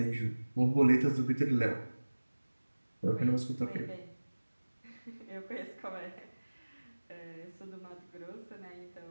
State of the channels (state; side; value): inverted; both; correlation -1.00